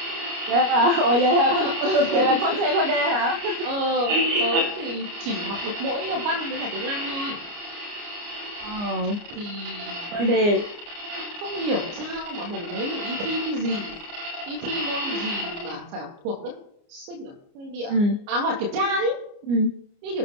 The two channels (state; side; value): late; left; 29 ms